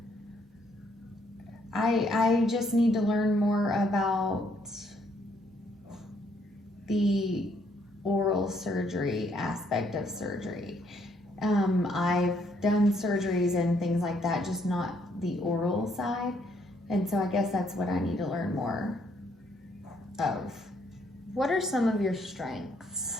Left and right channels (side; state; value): both; normal; correlation 0.70